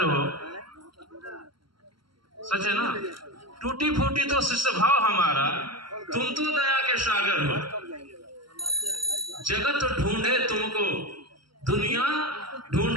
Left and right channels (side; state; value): left; late; 0.73 ms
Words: हो। सच है ना? टूटी फूटी तो शिष्य भाव हमारा, तुम तो दया के सागर हो। जगत ढूंढे तुमको, दुनिया